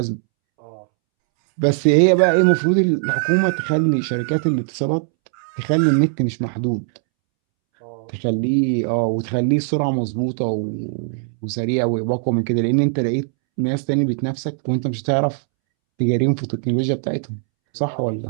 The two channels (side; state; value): left; silent; 66 dB below the other